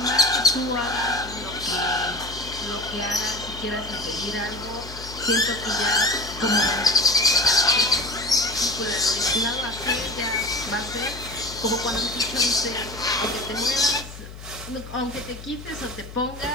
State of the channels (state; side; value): noise; left; hum, 14 dB below the sound